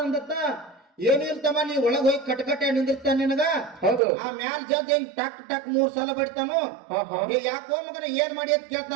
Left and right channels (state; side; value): drops out; left; at 4.0 s